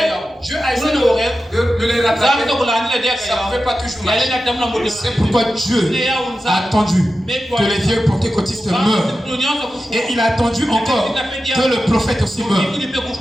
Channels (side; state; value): both; normal; correlation 0.92